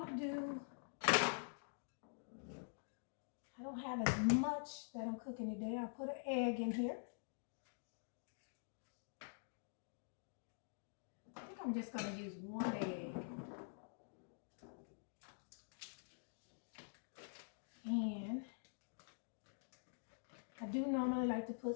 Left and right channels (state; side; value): silent; right; digital silence